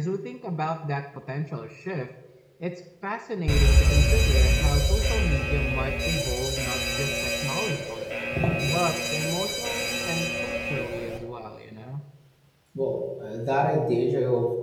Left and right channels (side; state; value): both; identical; correlation 1.00